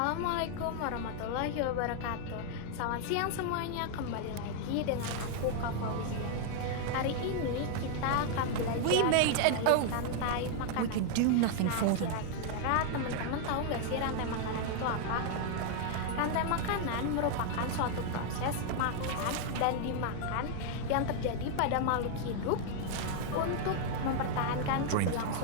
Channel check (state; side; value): different; both; correlation 0.00